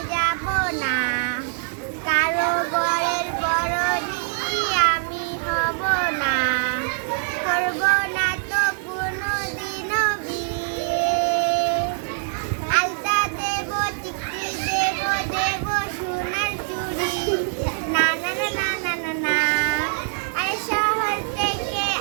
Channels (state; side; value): silent; left; digital silence